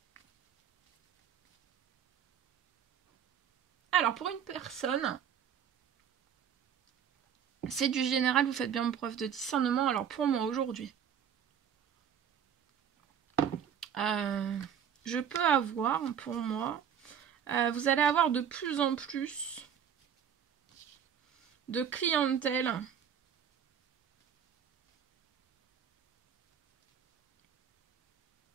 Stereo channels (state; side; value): quieter; left; 8.5 dB